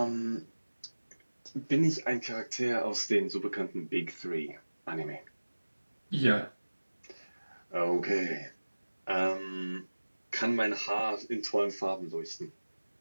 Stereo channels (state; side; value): inverted; both; correlation -1.00